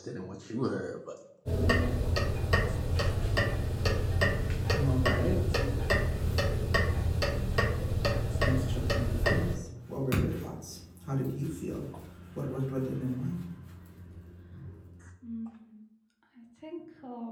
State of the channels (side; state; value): both; identical; correlation 1.00